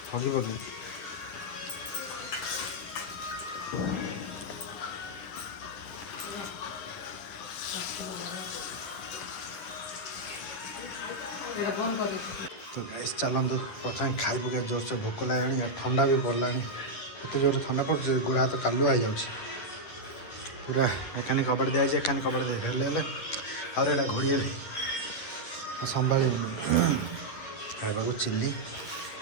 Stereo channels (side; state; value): right; late; 10 ms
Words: हगी पगी तो गैस चलतु प्रथम खाई पक जोर से भोक लगे और ठंडा भी पड़ा एत जोर ठंडा पड़े गोड़ा हाथ कालुआ हो जाऊँ पूरा एखाने कबाड़ दिखाई एखाने कबाड़ दे आउरा घोड़े संभा खाइबा चिल्ली